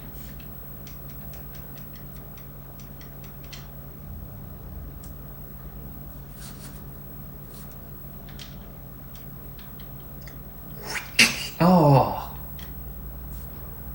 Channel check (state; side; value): noise; left; hum, 14 dB below the sound